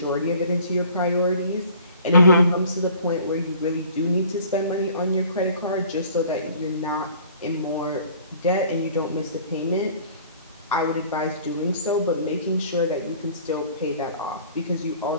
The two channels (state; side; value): inverted; both; correlation -0.51